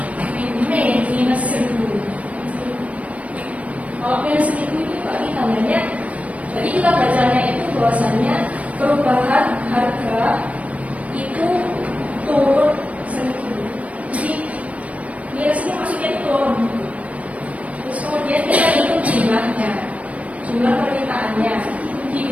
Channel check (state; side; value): late; left; 0.066 ms